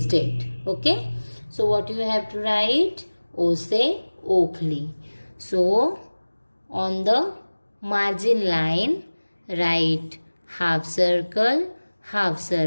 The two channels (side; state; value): both; inverted; correlation -1.00